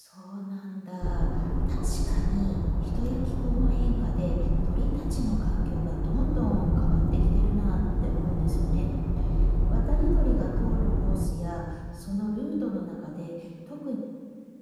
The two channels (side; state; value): both; identical; correlation 1.00